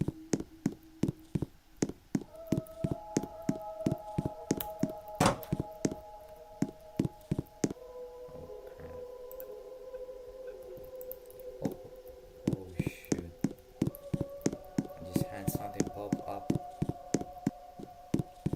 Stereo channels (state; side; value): identical; both; correlation 1.00